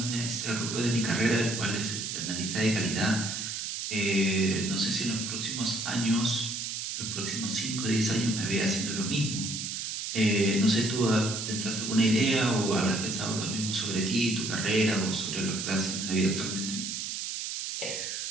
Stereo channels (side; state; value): right; noise; hiss, 4 dB below the sound